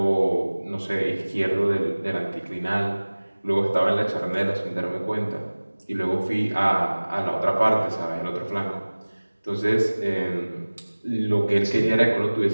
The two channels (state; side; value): inverted; both; correlation -1.00